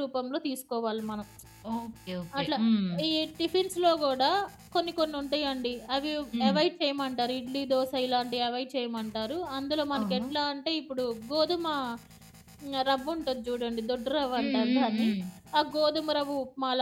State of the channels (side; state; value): both; identical; correlation 1.00